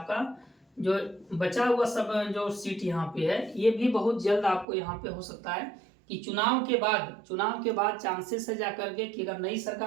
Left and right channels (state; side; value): drops out; left; at 4.7 s